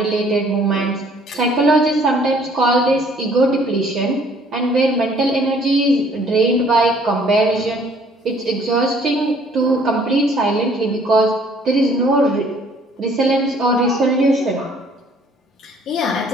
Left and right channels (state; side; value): normal; both; correlation 0.59